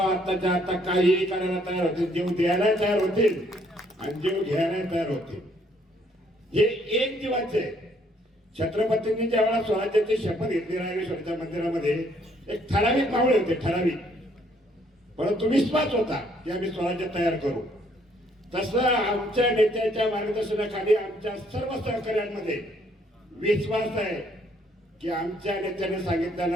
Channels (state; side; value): normal; both; correlation 0.66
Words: आताच्या आता काहीही करायला तयार होतील, जीव द्यायला तयार होतील आणि जीव घ्यायला तयार होतील. हे एक जीवाचे. छत्रपतींनी ज्यावेळेला स्वराज्याची शपथ घेतली रायरेश्वरच्या मंदिरामध्ये, एक ठराविक मावळे होते, ठराविक, परंतु विश्वास होता की आम्ही स्वराज्य तयार करू. तसं आमच्या नेत्याच्या मार्गदर्शनाखाली आमच्या सर्व सहकार्यांमध्ये विश्वास आहे की आमच्या नेत्याने